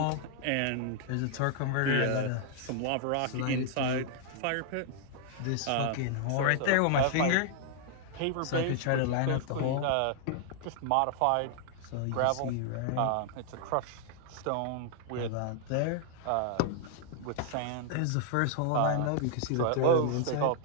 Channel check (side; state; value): both; different; correlation 0.00